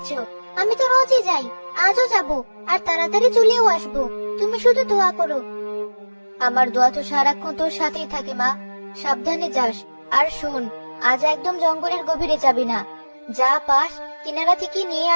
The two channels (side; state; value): both; inverted; correlation -1.00